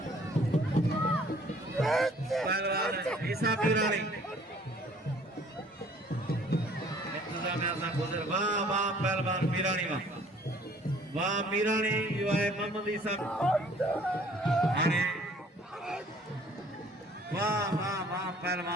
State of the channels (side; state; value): both; normal; correlation 0.56